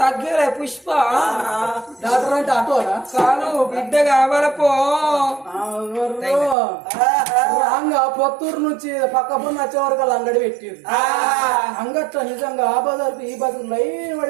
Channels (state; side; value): drops out; left; at 6.6 s